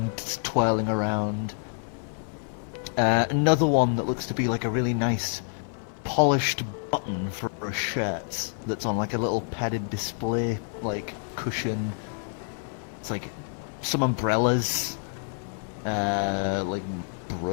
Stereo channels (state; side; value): silent; right; 60 dB below the other